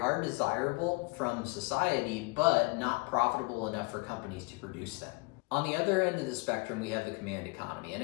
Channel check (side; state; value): right; quieter; 29.4 dB